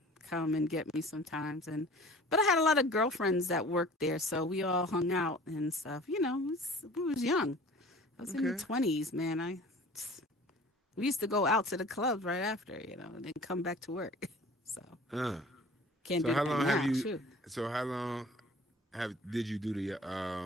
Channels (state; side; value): normal; both; correlation 0.45